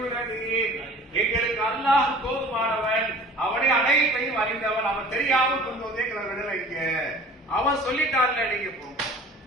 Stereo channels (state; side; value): normal; both; correlation 0.45